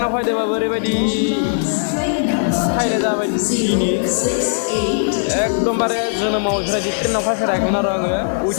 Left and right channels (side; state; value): right; silent; digital silence